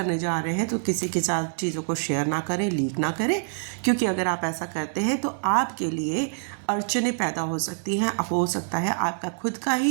जा रहे हैं तो किसी के साथ चीज़ों को शेयर ना करें, लीक ना करें, क्योंकि अगर आप ऐसा करते हैं तो आपके लिए अड़चनें पैदा हो सकती हैं। हो सकता है आपका खुद का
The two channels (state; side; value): silent; left; digital silence